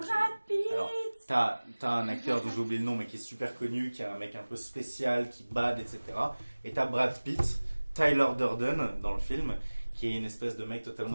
Pitt. Alors, t'as un acteur dont j'ai oublié le nom, mais qui est super connu, qui est un mec un peu spécial, qui bade, etc. Et t'as Brad Pitt, Tyler Durden dans le film, qui est une espèce de mec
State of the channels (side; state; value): both; inverted; correlation -1.00